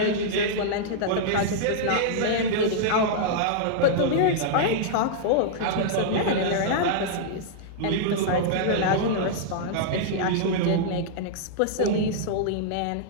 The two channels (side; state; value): both; different; correlation -0.02